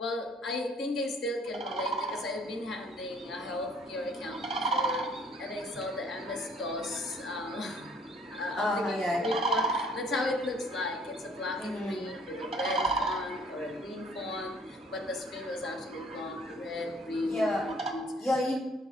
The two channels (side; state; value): both; normal; correlation 0.58